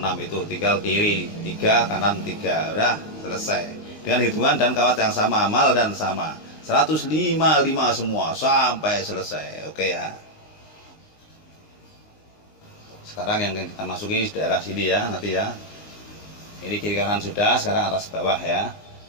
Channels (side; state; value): right; late; 19 ms